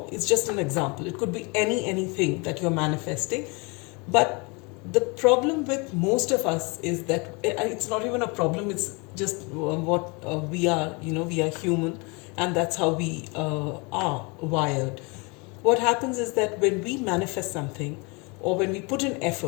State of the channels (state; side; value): quieter; right; 29.7 dB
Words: it's just an example. It could be anything that you're manifesting. But the problem with most of us is that it's not even a problem, it's just what we are. We are human, and that's how we are wired. What happens is that when we manifest something, or when we put in